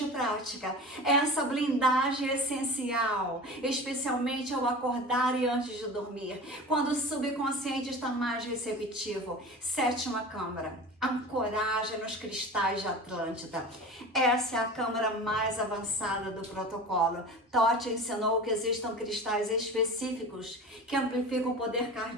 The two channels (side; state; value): both; normal; correlation 0.34